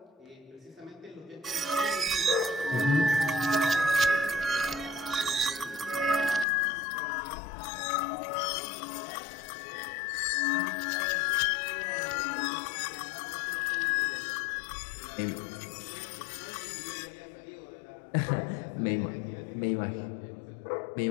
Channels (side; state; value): right; drops out; at 6.5 s